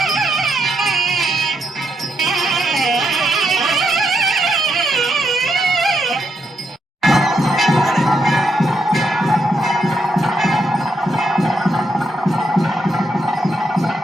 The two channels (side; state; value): both; normal; correlation 0.79